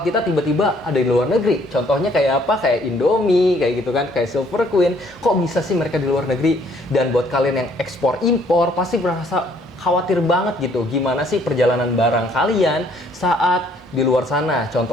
kita tiba-tiba ada di luar negeri? Contohnya kayak apa? Kayak Indomie, kayak gitu kan, kayak Silver Queen. Kok bisa sih mereka di luar negeri? Dan buat kalian yang ekspor impor, pasti merasa khawatir banget gitu. Gimana sih perjalanan barang kalian saat di luar sana,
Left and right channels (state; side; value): normal; both; correlation 0.63